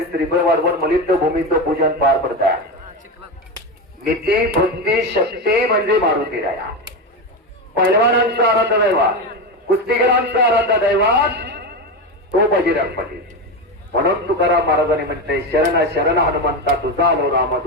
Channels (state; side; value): normal; both; correlation 0.16